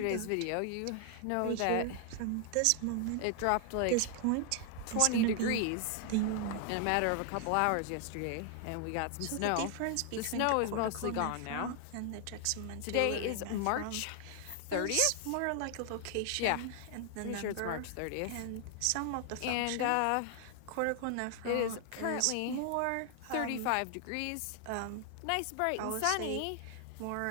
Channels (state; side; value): different; both; correlation 0.00